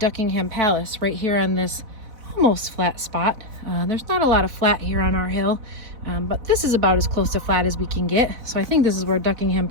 Palace, right here on this almost flat spot. There's not a lot of flat here on our hill, but this is about as close to flat as we can get, so I think this is where Duckingham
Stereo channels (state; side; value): late; left; 4.0 ms